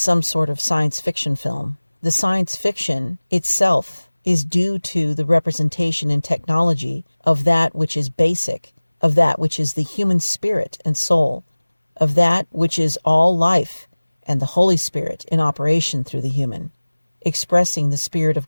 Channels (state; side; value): inverted; both; correlation -1.00